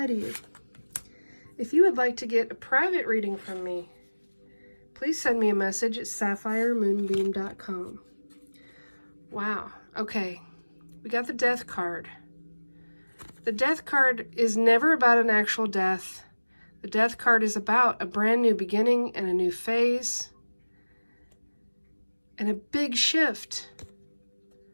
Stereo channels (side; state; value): both; inverted; correlation -1.00